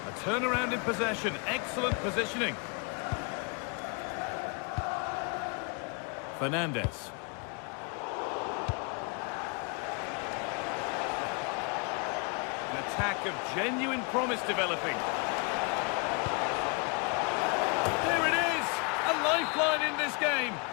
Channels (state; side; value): quieter; right; 34.2 dB